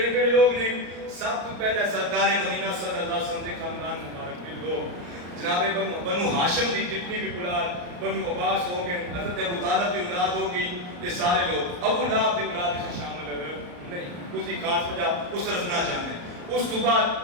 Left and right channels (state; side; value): late; left; 34 ms